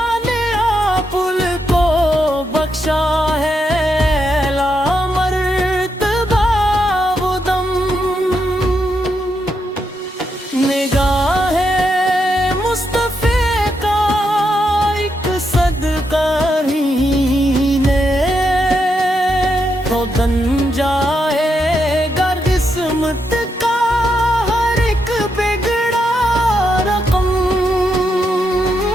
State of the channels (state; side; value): normal; both; correlation 0.82